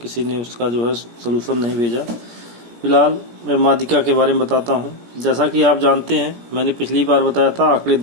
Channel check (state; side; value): late; left; 17 ms